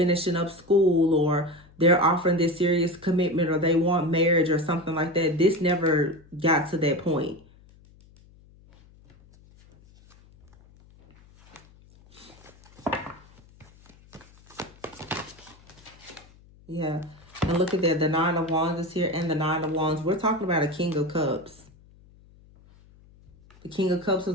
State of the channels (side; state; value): left; noise; hum, 26 dB below the sound